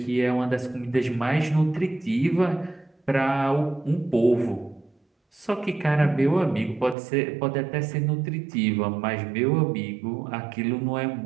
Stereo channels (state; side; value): drops out; left; at 7.0 s